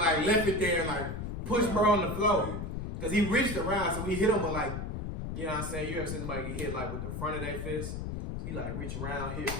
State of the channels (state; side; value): noise; left; rumble, 4 dB below the sound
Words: left it there and like pushed bro on the floor. Cause he reached around, so he hit him with like, you know what I'm saying? You ever seen somebody get hit like with the front of their fist? He like reached around, hit